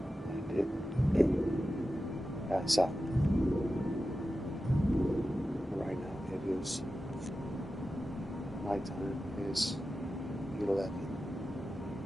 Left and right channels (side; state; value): both; normal; correlation 0.93